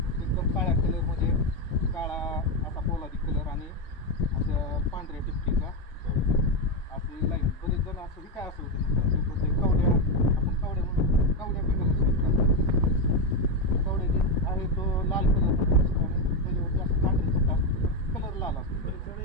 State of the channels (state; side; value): normal; both; correlation 0.08